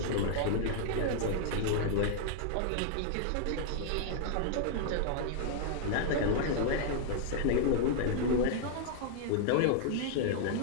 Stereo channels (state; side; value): different; both; correlation 0.00